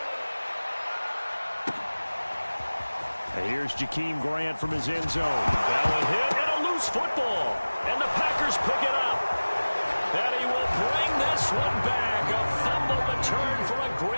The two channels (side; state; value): both; inverted; correlation -1.00